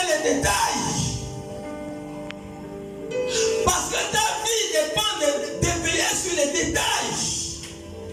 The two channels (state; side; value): identical; both; correlation 1.00